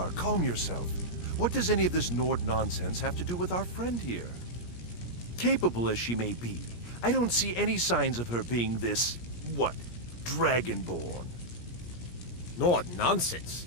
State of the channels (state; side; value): late; right; 17 ms